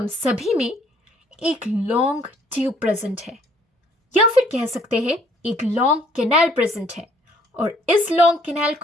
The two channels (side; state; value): both; normal; correlation 0.62